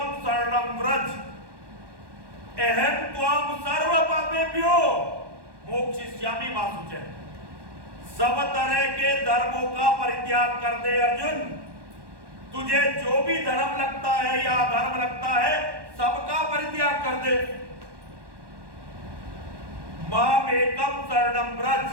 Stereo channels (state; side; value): late; left; 1.1 ms